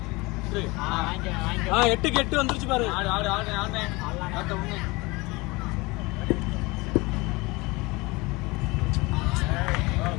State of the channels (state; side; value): quieter; right; 23.7 dB